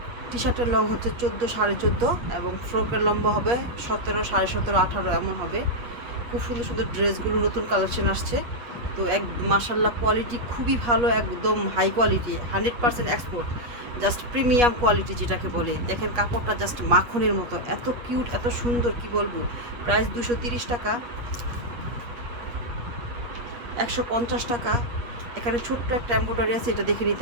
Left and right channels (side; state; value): left; late; 8.4 ms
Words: টি শার্টের লং হচ্ছে 14, 14.5, এবং ফ্রকের লম্বা হবে 17, 17.5, 18 এমন হবে। খুব সুন্দর সুন্দর ড্রেসগুলো নতুন কালেকশন আসছে। তো মাশাল্লাহ কোয়ালিটি খুবই ভালো, একদম high quality, 100% export, just premium quality যেটাকে বলে। দেখেন কাপড়টা জাস্ট মাখনের মতো, এত কিউট, এত সুন্দর, কি বলবো। প্রাইস 230 টাকা, 150 টাকা। এখানে ছোট্ট একটা এম্ব্রয়ডারি আছে, এটা দেখে